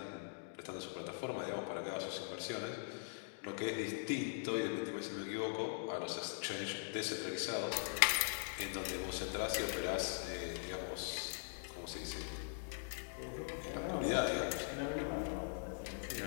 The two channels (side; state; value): right; silent; digital silence